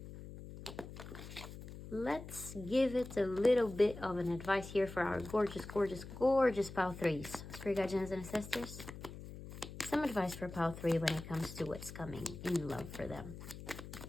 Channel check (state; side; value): noise; left; hum, 12 dB below the sound